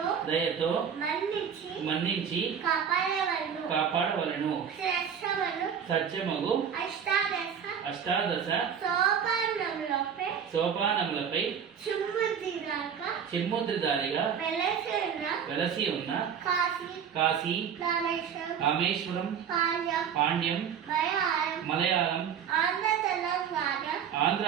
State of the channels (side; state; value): left; quieter; 7.7 dB